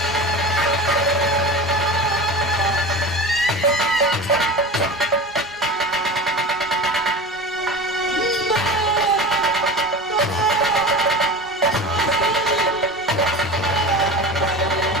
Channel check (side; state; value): both; normal; correlation 0.31